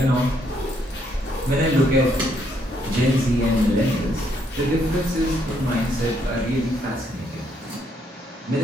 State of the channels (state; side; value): normal; both; correlation 0.72